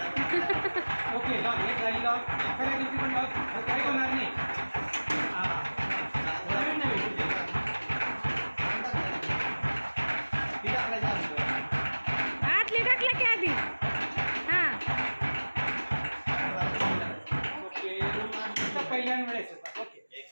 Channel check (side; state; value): both; inverted; correlation -1.00